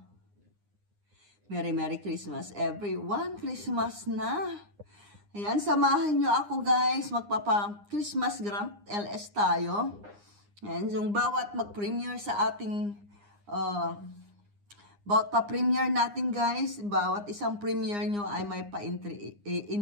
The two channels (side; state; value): left; late; 9.8 ms